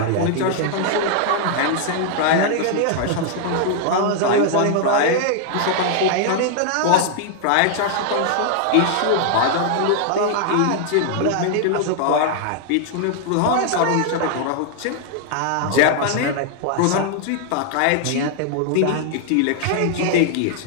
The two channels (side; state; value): both; different; correlation 0.00